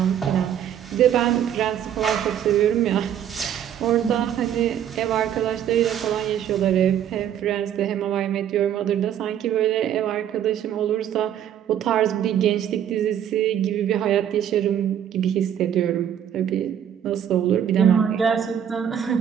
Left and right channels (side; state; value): left; quieter; 9.7 dB